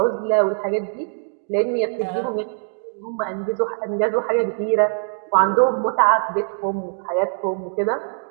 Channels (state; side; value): silent; left; 58 dB below the other